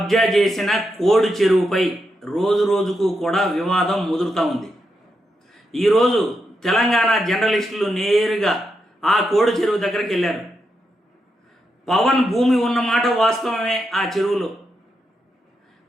చేసిన కోడి చెరువుపై రోజు రోజుకు కూడా వివాదం ముదురుతూ ఉంది. ఈరోజు తెలంగాణ జర్నలిస్టులు నేరుగా ఆ కోడి చెరువు దగ్గరికి వెళ్ళారు. పవన్ భూమి ఉన్నమాట వాస్తవమే. ఆ చెరువులో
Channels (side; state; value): both; normal; correlation 0.84